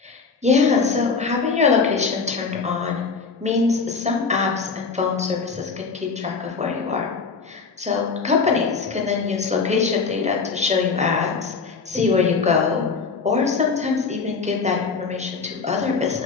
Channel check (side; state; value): right; quieter; 4.9 dB